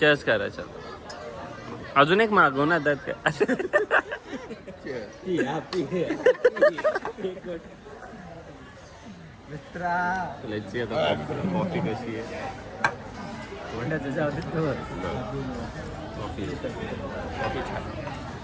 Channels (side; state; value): both; identical; correlation 1.00